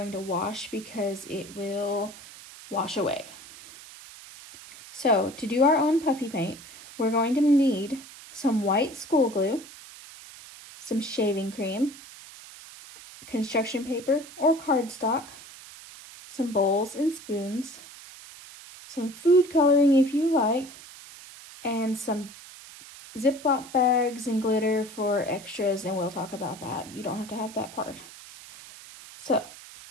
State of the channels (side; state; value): right; noise; hiss, 17 dB below the sound